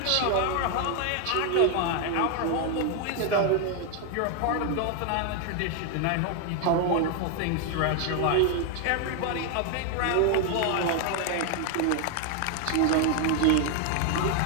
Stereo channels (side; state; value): both; different; correlation 0.01